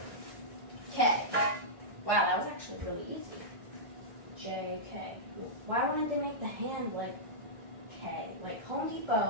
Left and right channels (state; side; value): late; left; 1.4 ms